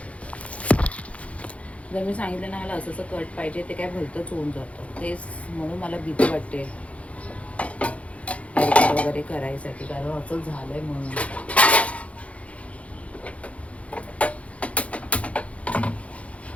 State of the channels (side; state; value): right; late; 0.064 ms